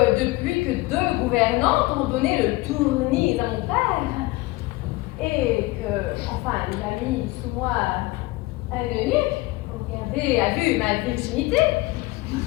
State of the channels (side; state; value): right; quieter; 21.1 dB